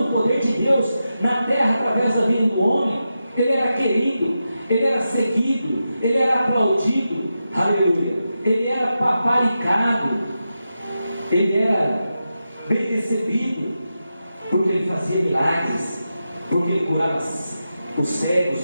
o poder de Deus na terra através da vida do homem, ele era querido, ele era seguido, ele era aplaudido, aleluia, ele era paparicado, ele era bem recebido, porque ele fazia milagres, porque ele curava os cegos,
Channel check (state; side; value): inverted; both; correlation -0.90